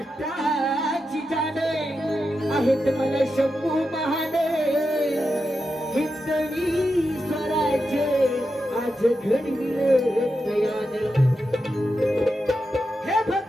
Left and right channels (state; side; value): normal; both; correlation 0.88